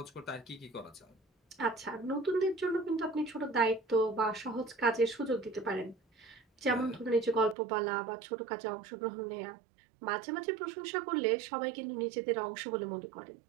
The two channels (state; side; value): drops out; left; at 7.6 s